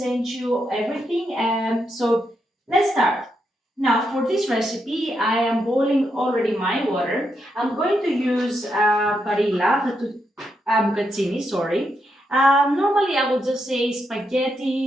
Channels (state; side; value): normal; both; correlation 0.82